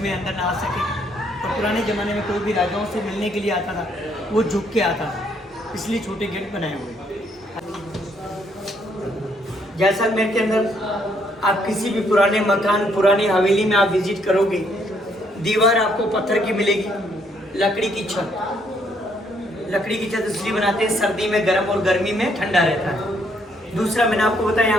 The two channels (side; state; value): both; normal; correlation 0.70